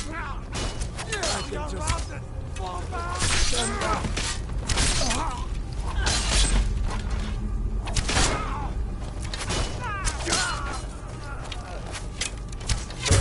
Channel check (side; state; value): both; identical; correlation 1.00